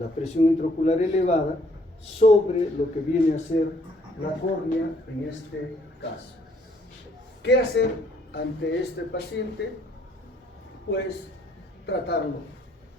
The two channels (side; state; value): both; normal; correlation 0.65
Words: presión intraocular elevada sobre lo que viene a ser la córnea en este caso. ¿Qué hacer ante este paciente? Pues tratarlo.